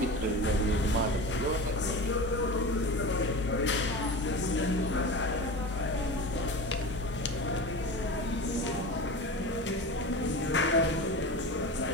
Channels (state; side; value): normal; both; correlation 0.29